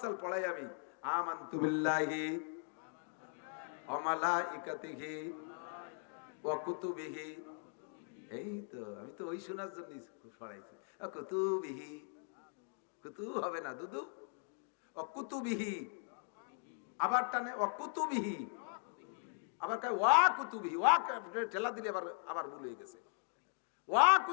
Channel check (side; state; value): right; silent; 51 dB below the other